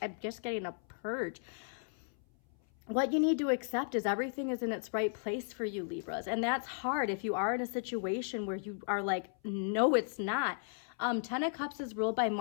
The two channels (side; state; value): right; silent; 54 dB below the other